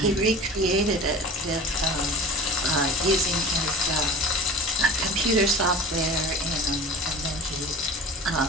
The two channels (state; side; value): normal; both; correlation 0.36